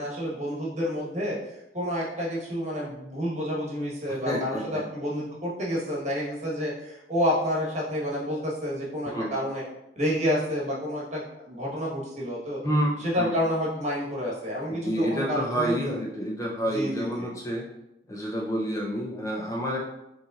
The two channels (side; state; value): both; normal; correlation 0.45